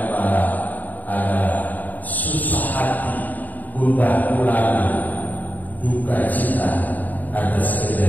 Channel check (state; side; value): late; right; 0.082 ms